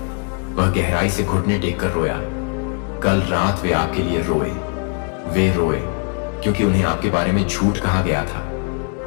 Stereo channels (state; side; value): quieter; right; 37.2 dB